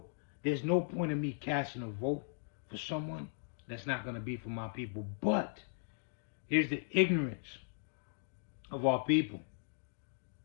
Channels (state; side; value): silent; right; digital silence